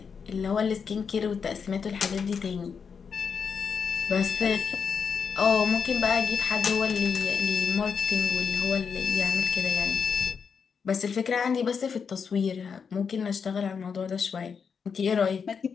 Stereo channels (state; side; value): quieter; right; 6.2 dB